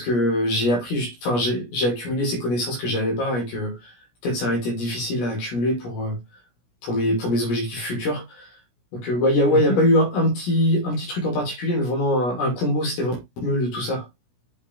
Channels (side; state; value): right; late; 17 ms